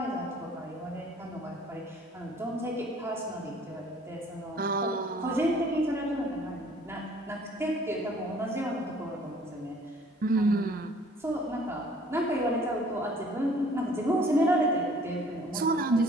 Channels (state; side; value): normal; both; correlation 0.55